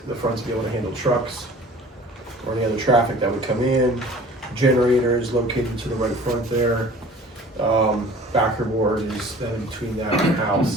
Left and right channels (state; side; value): normal; both; correlation 0.46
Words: the front to be able to handle trucks or any other traffic that would come in. Generators located to the right front there. Backer board is then between that and the